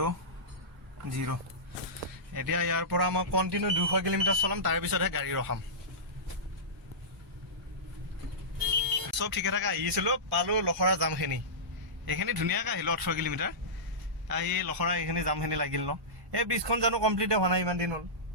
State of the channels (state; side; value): normal; both; correlation -0.17